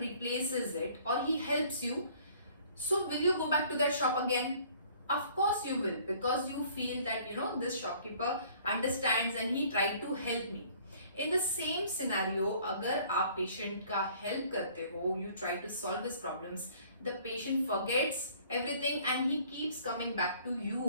it or he helps you. So will you go back to that shop again? Of course you will, because you feel that this shopkeeper understands and he tried to help me. In the same scenario, अगर आप patient का help करते हो, you try to solve his problems, the patient forgets everything and he keeps coming back to you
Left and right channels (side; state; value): both; inverted; correlation -0.55